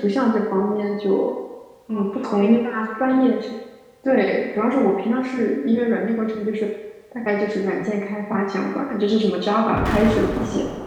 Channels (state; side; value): identical; both; correlation 1.00